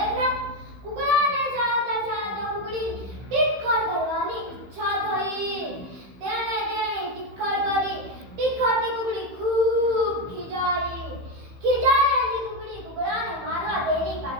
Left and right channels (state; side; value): late; left; 15 ms